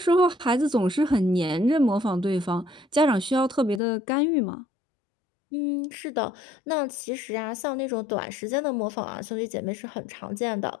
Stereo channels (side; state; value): right; drops out; at 3.8 s